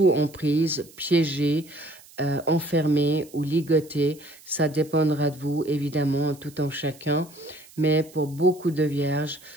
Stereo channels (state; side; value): noise; right; hiss, 23 dB below the sound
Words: emprise, piégé, enfermé ou ligoté. Ça dépendra de vous, évidemment, tout en chacun. Mais pour beaucoup de vierges,